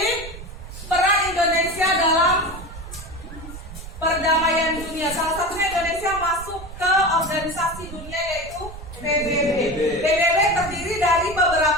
peran Indonesia dalam perdamaian dunia, salah satunya Indonesia masuk ke organisasi dunia yaitu PBB. PBB terdiri dari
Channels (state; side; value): noise; right; rumble, 13 dB below the sound